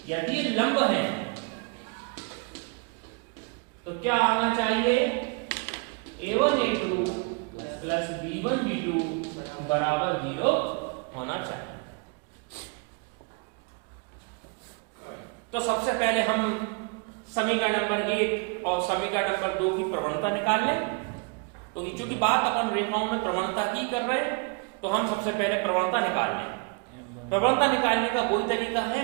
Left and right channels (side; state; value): left; quieter; 32.3 dB